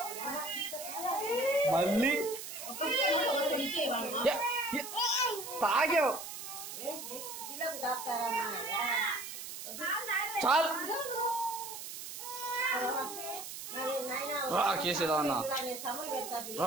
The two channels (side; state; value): right; noise; hiss, 9 dB below the sound